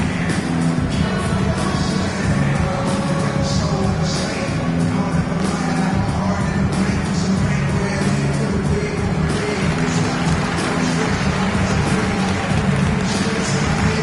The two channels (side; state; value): both; identical; correlation 1.00